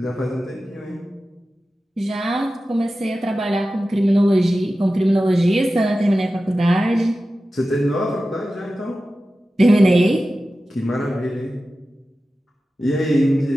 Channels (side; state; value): both; normal; correlation 0.94